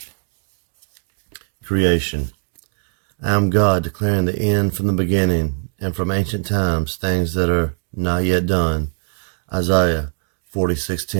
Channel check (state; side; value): silent; left; 65 dB below the other